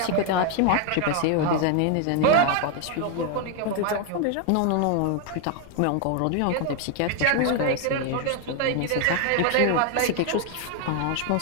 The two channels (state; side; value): different; both; correlation 0.01